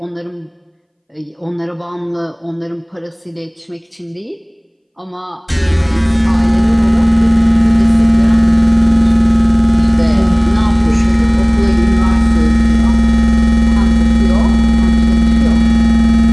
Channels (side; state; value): both; identical; correlation 1.00